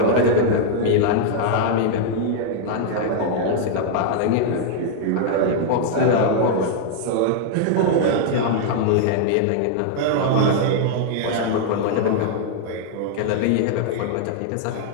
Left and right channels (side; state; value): both; different; correlation 0.00